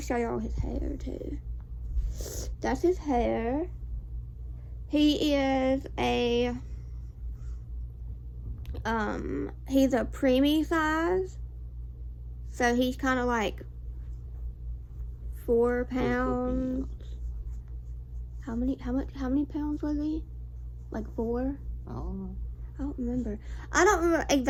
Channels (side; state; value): both; identical; correlation 1.00